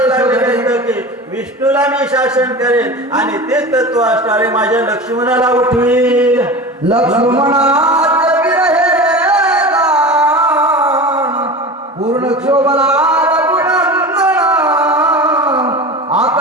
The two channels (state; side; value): normal; both; correlation 0.31